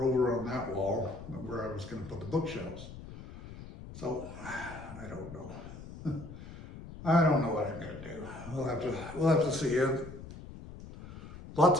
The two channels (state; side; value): noise; left; rumble, 13 dB below the sound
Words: over on that wall where I was gonna put the bookshelves. So, I don't know. I don't know what I'm gonna do. We'll have to see. Lots